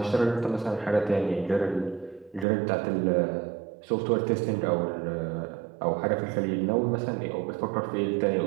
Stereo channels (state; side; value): drops out; left; at 2.5 s